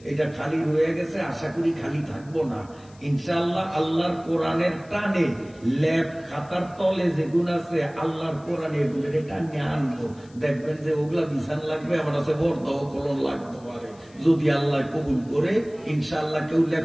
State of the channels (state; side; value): noise; left; hiss, 28 dB below the sound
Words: এটা খালি রয়ে গেছে, আশা করি খালি থাকবো না ইনশাআল্লাহ। আল্লাহর কোরআনের টানে ল্যাব খাতার তলে যেগুলো আছে আল্লাহর কোরআনে এগুলো টানে আনবো, দেখবেন যে ওগুলা বিছান লাগবে, আমার কাছে বর্দাও কলম লাগতে পারে। যদি আল্লাহ কবুল করে ইনশাআল্লাহ কেউ